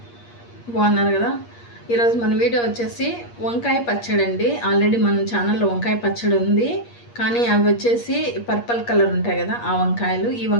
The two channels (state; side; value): late; right; 8.5 ms